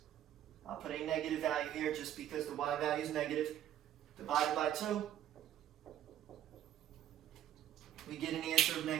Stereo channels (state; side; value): quieter; left; 11.5 dB